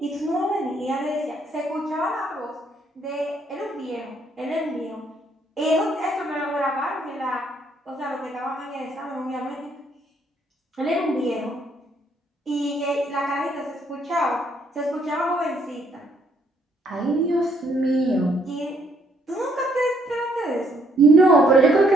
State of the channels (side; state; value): both; normal; correlation 0.69